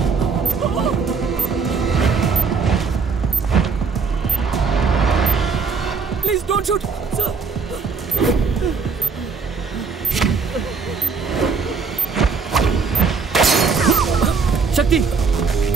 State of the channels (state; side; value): quieter; left; 5.2 dB